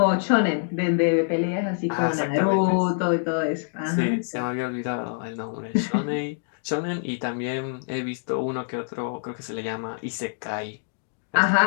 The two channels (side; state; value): right; silent; digital silence